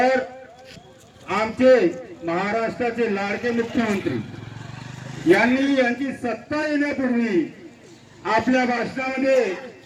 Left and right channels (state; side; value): identical; both; correlation 1.00